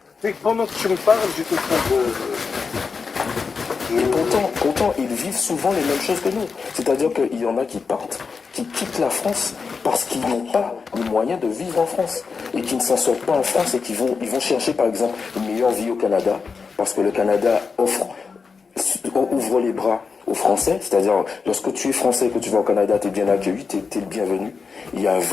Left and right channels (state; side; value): quieter; right; 5.1 dB